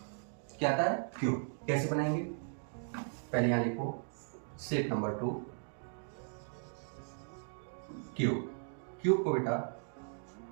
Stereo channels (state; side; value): silent; left; 53 dB below the other